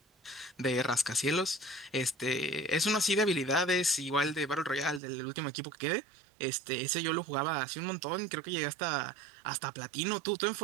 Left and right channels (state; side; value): drops out; left; at 5.0 s